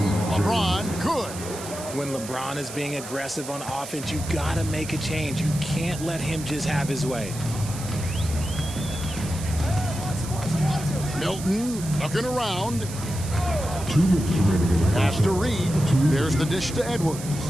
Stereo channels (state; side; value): noise; right; hiss, 12 dB below the sound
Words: LeBron, good. When LeBron is being aggressive on offense, you got to make a change. You can't let him just have his way. Milton looking around. Pass to Reed. There's the dish to Edwards.